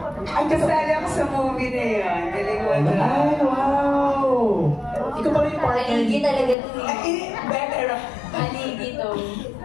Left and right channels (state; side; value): drops out; right; at 6.6 s